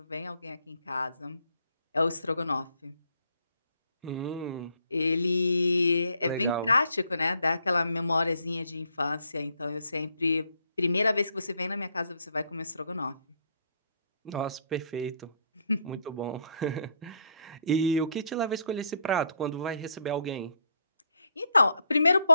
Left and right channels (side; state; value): both; inverted; correlation -0.68